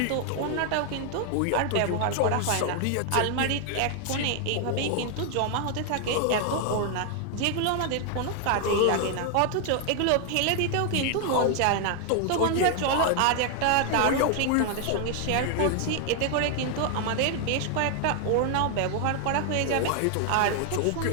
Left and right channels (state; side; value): different; both; correlation 0.00